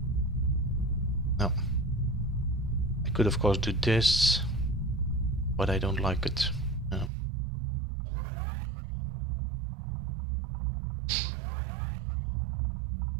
No. I could of course do this, but I don't like it. No.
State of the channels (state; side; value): drops out; left; at 7.1 s